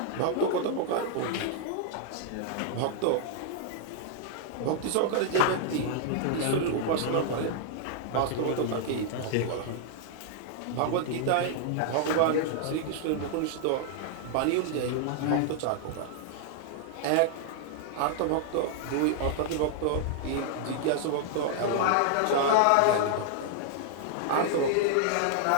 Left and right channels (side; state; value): both; different; correlation -0.01